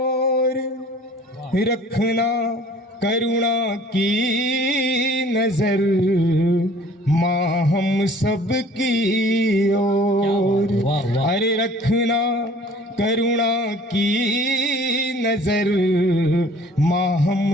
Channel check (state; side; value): normal; both; correlation 0.51